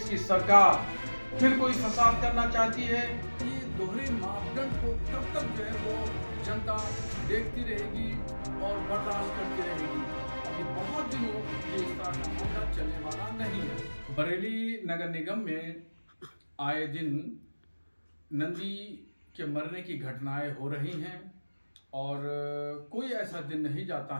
की सरकार फिर कोई फसाद करना चाहती है? ये दोहरे मापदंड को कब तक जो है वो जनता देखती रहेगी और बर्दाश्त करती रहेगी? अभी बहुत दिनों ये इस तरह का मामला चलने वाला नहीं है। बरेली नगर निगम में आए दिन नंदी के मरने की घटनाएं हो रही हैं और कोई ऐसा दिन नहीं जाता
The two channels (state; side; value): inverted; both; correlation -1.00